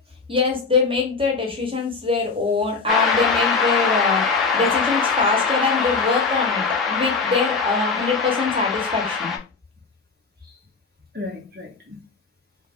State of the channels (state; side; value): quieter; right; 4.4 dB